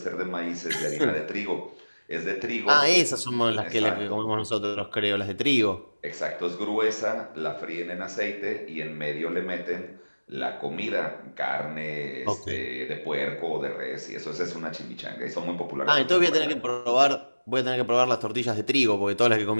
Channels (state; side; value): inverted; both; correlation -1.00